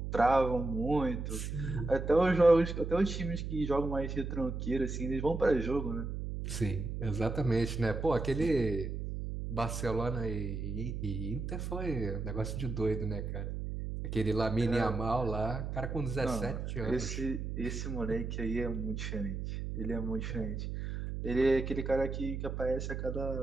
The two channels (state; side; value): noise; right; hum, 4 dB below the sound